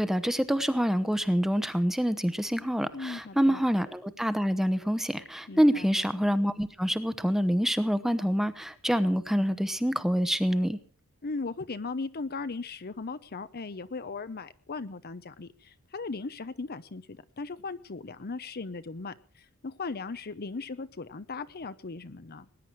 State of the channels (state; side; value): normal; both; correlation 0.92